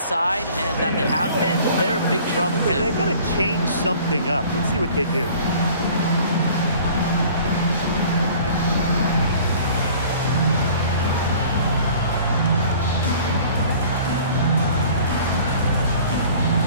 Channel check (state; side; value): inverted; both; correlation -0.48